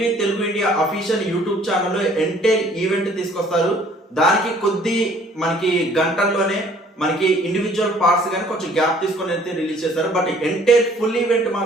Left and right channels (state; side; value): normal; both; correlation 0.57